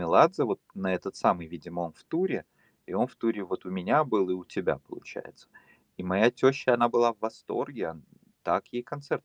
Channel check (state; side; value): identical; both; correlation 1.00